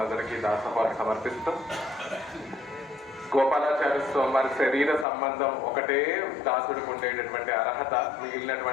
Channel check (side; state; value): right; drops out; at 5.1 s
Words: దాసోహాలు సమర్పిస్తూ, గోపాలాచార్య స్వామి వారి శరీర సంబంధం ఒకటే దాసుడికి ఉండేటటువంటి అర్హత,